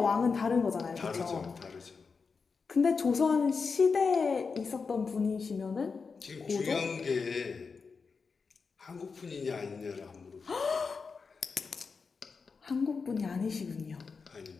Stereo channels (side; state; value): right; quieter; 5.0 dB